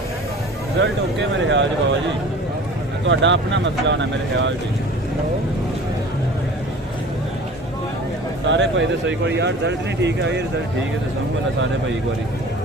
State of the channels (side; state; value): both; normal; correlation 0.42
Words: रिजल्ट ओके मेरे ख्याल जी बाबा जी ਤੁਹਾਡਾ अपना मसला होना मेरे ख्याल जी सारे भाई तो सही कोई यार रिजल्ट नहीं ठीक है ये रिजल्ट ठीक है तो समझ सारे भाई एक बारी